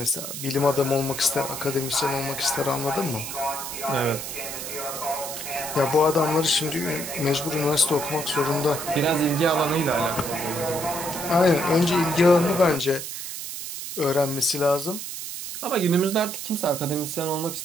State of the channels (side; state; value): right; noise; hiss, 7 dB below the sound